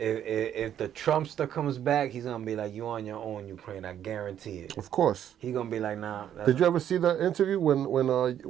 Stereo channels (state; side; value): quieter; left; 10.2 dB